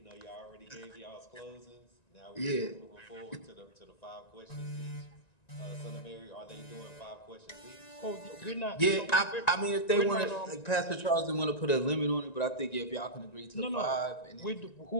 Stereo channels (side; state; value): right; late; 1.9 ms